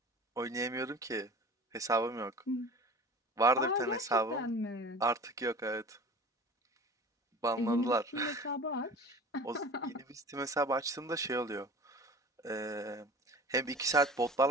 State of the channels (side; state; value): both; normal; correlation 0.39